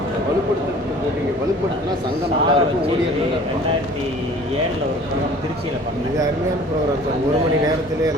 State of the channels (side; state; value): both; normal; correlation 0.48